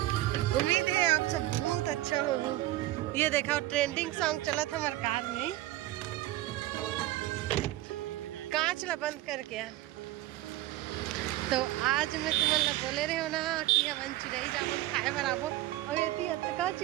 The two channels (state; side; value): quieter; left; 16.3 dB